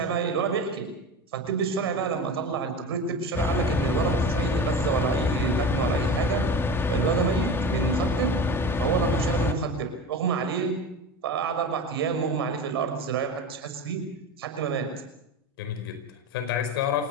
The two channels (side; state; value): both; normal; correlation 0.28